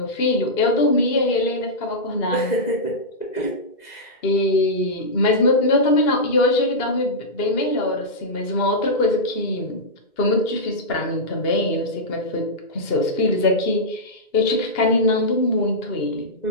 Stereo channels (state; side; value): late; right; 2.1 ms